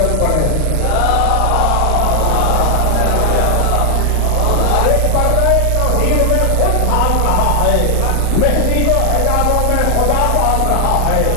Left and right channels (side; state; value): both; different; correlation 0.00